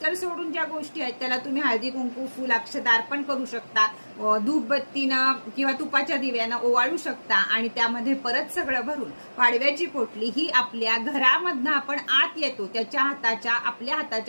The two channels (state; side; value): inverted; both; correlation -1.00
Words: सोडून ज्या गोष्टी आहेत त्याला तुम्ही हळदी कुंकू फुल अक्षता अर्पण करू शकता, धूपबत्तीनं किंवा तुपाच्या दिव्यानं ओवाळू शकता आणि त्यामध्ये परत सगळं भरून पाडव्याची पोटली ही आपल्या घरामधनं आपण आत येतो त्याच्या आपल्या